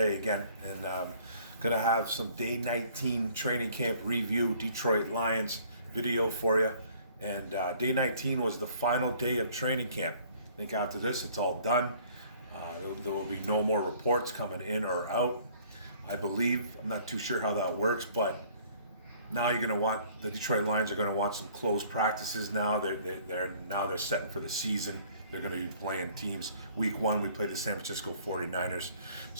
again, and gonna have some day 19 training camp review, Detroit Lions video for you. And day 19 was the final day of training camp. I think after this, it's all done. There will be no more reports coming in or out, I believe. I'm not too sure how that works, but now the Detroit Lions are going to want some close practices now. They're setting for the season. They're going to be playing teams. Week 1, we played the San Francisco 49ers.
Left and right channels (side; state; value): both; inverted; correlation -0.56